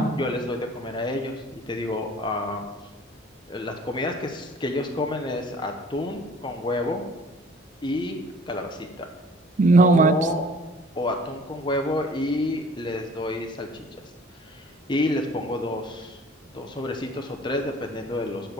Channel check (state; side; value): normal; both; correlation 0.51